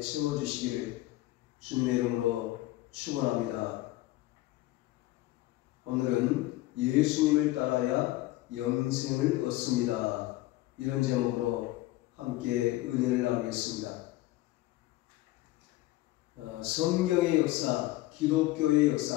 채워주시기를 주님의 이름으로 축원합니다. 오늘은 예수님을 따라야 영생을 얻습니다. 이런 제목으로 함께 은혜를 나누겠습니다. 성경의 역사, 기독교의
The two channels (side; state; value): right; quieter; 17.3 dB